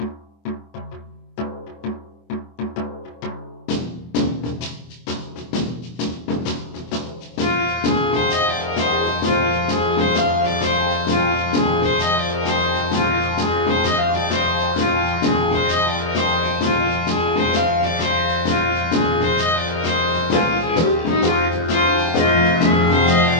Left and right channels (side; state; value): right; late; 24 ms